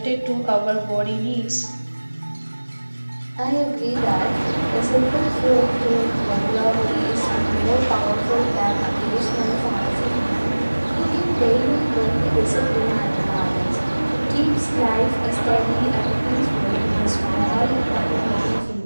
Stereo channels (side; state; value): both; inverted; correlation -1.00